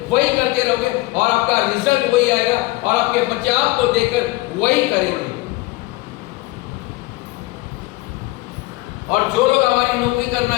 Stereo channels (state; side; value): quieter; right; 20.8 dB